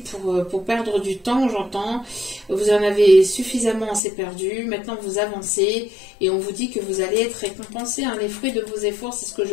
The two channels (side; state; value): right; drops out; at 4.0 s